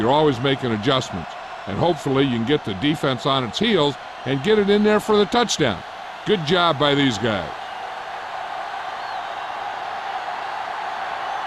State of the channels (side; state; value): both; identical; correlation 1.00